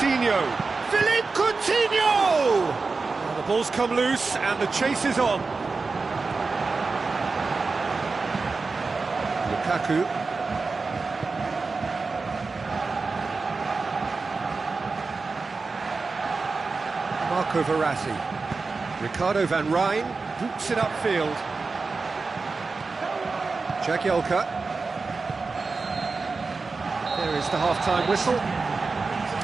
Philippe Coutinho! Now the ball's come loose and the chase is on. Lukaku. Marco Verratti. Ricardo van Rijn boots it upfield. Jagielka. There is the half-time whistle.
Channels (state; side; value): quieter; left; 4.2 dB